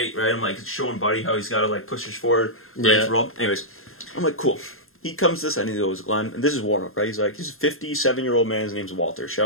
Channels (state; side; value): late; right; 0.61 ms